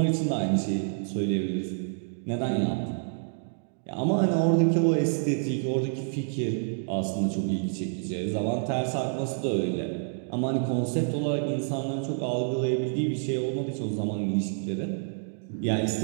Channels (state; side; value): silent; left; digital silence